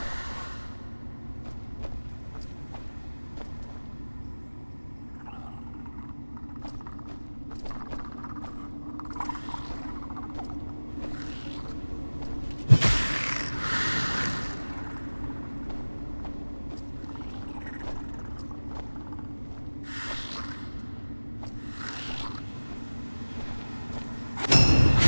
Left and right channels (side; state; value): both; inverted; correlation -1.00